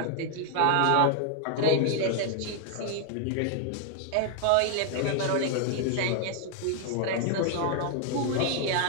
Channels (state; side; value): different; both; correlation 0.00